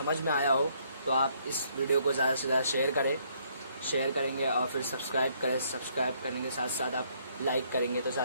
में आया हो तो आप इस वीडियो को ज़्यादा से ज़्यादा शेयर करेंगे और फिर सब्सक्राइब करने के साथ साथ आप लाइक करेंगे तो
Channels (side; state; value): both; inverted; correlation -0.68